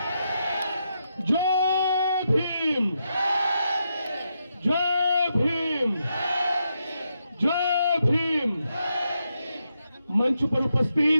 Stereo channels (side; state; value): both; inverted; correlation -0.83